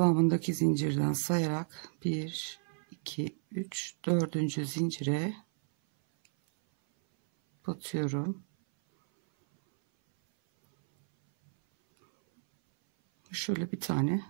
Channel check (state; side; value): silent; left; 57 dB below the other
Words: zincirden sayarak 1, 2, 3, 4. zincire batıyorum. Şöyle bir tane